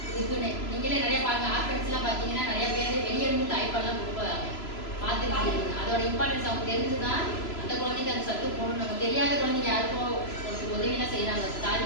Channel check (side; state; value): right; late; 3.0 ms